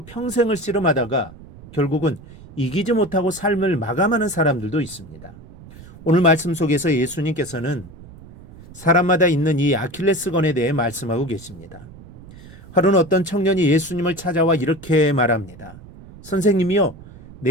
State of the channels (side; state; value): right; noise; rumble, 19 dB below the sound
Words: 평생을 씨름하다가 결국은 이기지 못하고 삶을 마감하는 사람들도 있습니다. 오늘 말씀 속에서 예수님께서는 사람마다 있는 이 아킬레스건에 대해 말씀하고 계십니다. 하루는 어떤 청년이 예수님을 찾아와 이렇게 말합니다. 선생님이요,